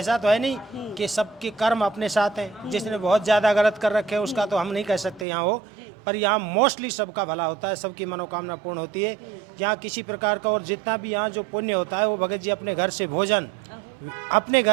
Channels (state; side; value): drops out; left; at 5.2 s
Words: तो है नहीं कि सबके कर्म अपने साथ हैं, जिसने बहुत ज़्यादा गलत कर रखे हैं उसका तो हम नहीं कह सकते यहाँ हो, पर यहाँ मोस्टली सबका भला होता है, सबकी मनोकामना पूर्ण होती है। यहाँ किसी प्रकार का, और जितना भी यहाँ जो पुण्य होता है वो भगत जी अपने घर से भोजन, अपने